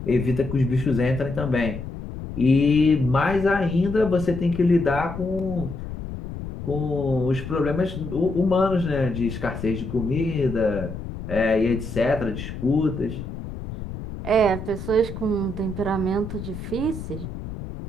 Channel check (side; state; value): left; noise; rumble, 9 dB below the sound